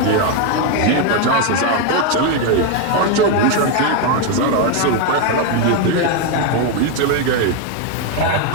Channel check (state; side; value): different; both; correlation 0.02